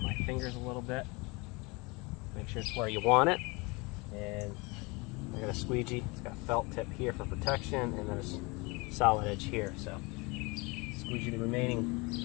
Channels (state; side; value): quieter; right; 26.8 dB